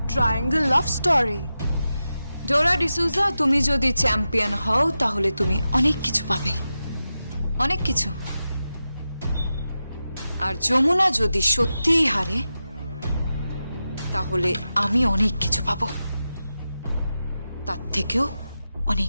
triangle love story. ডোরা ডিসুজা, তুমি যদি চ্যাম্পিয়ন হও তাহলে তুমি অনেক কিছু পাবে, অনেক কিছু। আর যমুনা যদি সত্যিই হারে তাহলে আমি অনেক কিছু পাবো, তার থেকেও অনেক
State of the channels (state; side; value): inverted; both; correlation -0.91